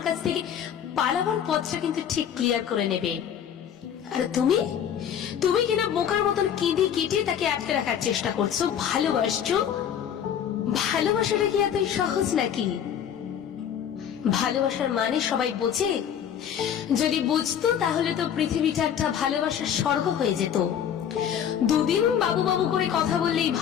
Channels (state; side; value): quieter; right; 8.9 dB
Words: কাছ থেকে পালাবার পথটা কিন্তু ঠিক ক্লিয়ার করে নেবে। আর তুমি তুমি কিনা বোকার মতন কেঁদে কেটে তাকে আটকে রাখার চেষ্টা করছো। ভালোবাসছো? ভালোবাসাটা কি এতই সহজ নাকি? ভালোবাসার মানে সবাই বোঝে? যদি বুঝতো তাহলে তো পৃথিবীটা একটা ভালোবাসার স্বর্গ হয়ে যেত। দুদিন বাবু বাবু করে কথা বললেই